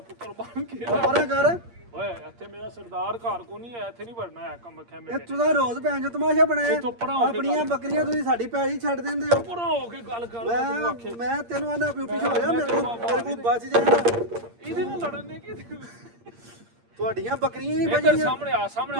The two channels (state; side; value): late; left; 8.6 ms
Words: ਪੁੱਤਰ ਬਣ ਕੇ ਪਰਾਂ ਕਰ ਓਏ ਇੱਥੇ ਮੇਰਾ ਸਰਦਾਰ ਘਰ ਕੋ ਨਹੀਂ ਹੈ ਇੱਥੇ ਨਹੀਂ ਵੜਨਾ ਹੈ ਕੰਮ ਖੈਮੇ ਇਹ ਤੁਸੀਂ ਰੋਜ਼ ਭੈਣ ਜੋ ਤਮਾਸ਼ਾ ਬਣਾਇਆ ਇੱਥੋਂ ਪਰਾਂ ਹੋ ਕੇ ਆਪਣੀਆਂ ਬੱਕਰੀਆਂ ਤੁਸੀਂ ਸਾਡੀ ਪੈਲੀ ਛੱਡ ਦਿੰਦੇ ਹੋ ਪਰਾਂ ਹੋ ਕੇ ਗੱਲ ਕਰ ਤੂੰ ਆਖੇ ਮੈਂ ਤੈਨੂੰ ਆਨਾ ਪਿਓ ਪਿੱਛੇ ਹੋ ਜਾ ਮੇਰੇ ਕੋਲ ਬਚ ਜਾਣਾ ਇਹਦੇ ਨਾਲ ਲੜਨ ਨੇ ਕੀ ਤੁਹਾਡੀਆਂ ਬੱਕਰੀਆਂ ਨਹੀਂ ਇੱਧਰ ਬਚੀਆਂ